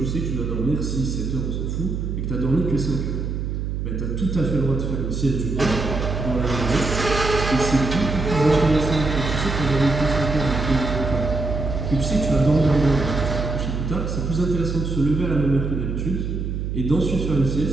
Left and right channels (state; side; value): noise; right; hum, 3 dB below the sound